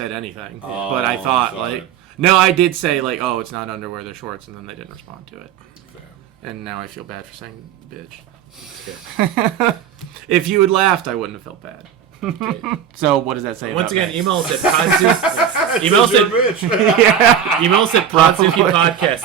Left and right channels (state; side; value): quieter; left; 8.6 dB